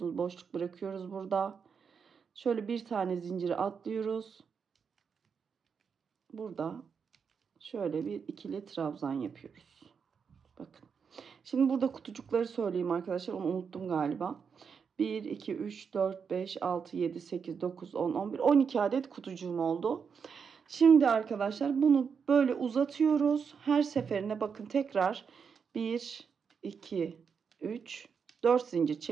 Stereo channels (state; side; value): quieter; left; 6.3 dB